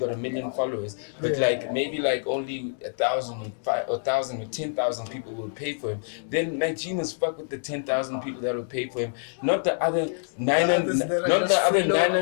1 million followers, but like maybe like only 1,000 or 10,000 people will pay for him, then MacG must fuck with the 10,000 people that will pay for him, not the other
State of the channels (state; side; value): silent; right; digital silence